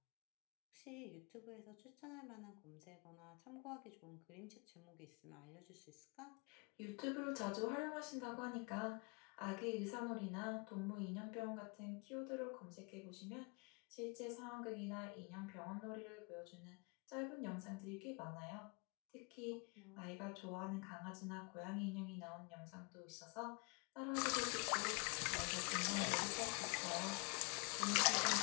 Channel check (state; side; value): quieter; right; 32.9 dB